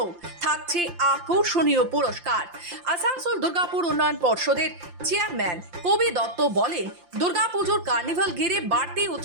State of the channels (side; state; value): left; late; 5.8 ms